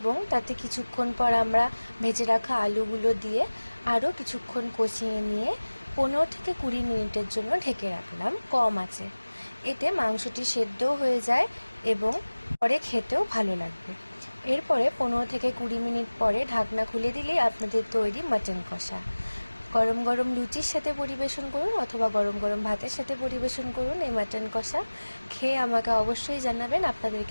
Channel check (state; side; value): inverted; both; correlation -1.00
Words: এবং তাতে কিছুক্ষণ পর আমরা ভেজে রাখা আলুগুলো দিয়ে আরও কিছুক্ষণ কষিয়ে নিয়ে 15 থেকে 20 মিনিটের জন্য ঢেকে রাখলাম কম আঁচে। এতে মাংসটি সেদ্ধও হয়ে যায় এবং পরে খেতেও ভালো লাগবে। এরপরে 15 থেকে 20 মিনিট পরে ঢাকনা খুলে দিলেই আপনাদের তৈরি মাটন কষা। গরম গরম লুচির সাথে পরিবেশন করুন অথবা গরম গরম ভাতের সাথে পরিবেশন করুন এই মাটন কষা। খেয়ে আমাকে অবশ্যই জানাবেন আপনাদের